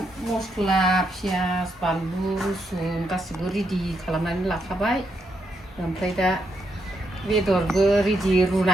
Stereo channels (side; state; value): both; normal; correlation 0.79